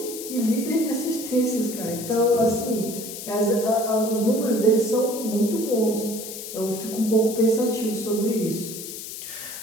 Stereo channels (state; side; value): noise; left; hiss, 10 dB below the sound